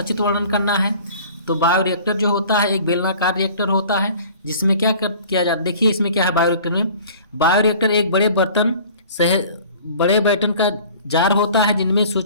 वर्णन करना है। तो बायोरिएक्टर जो होता है एक बेलनाकार रिएक्टर होता है, जिसमें क्या किया जाता है, देखिए इसमें क्या है। बायोरिएक्टर में बायोरिएक्टर एक बड़े बर्तन का जार होता है, जिनमें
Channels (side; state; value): both; inverted; correlation -0.47